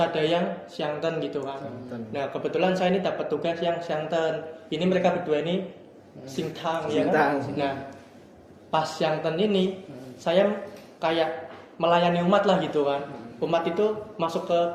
yang siangten gitu kan. Nah, kebetulan saya ini dapat tugas yang siangten. Ini mereka berdua ini sintang ya kan. Nah, pas siangten ini saya kayak melayani umat lah gitu kan. Umat itu masuk ke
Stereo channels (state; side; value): identical; both; correlation 1.00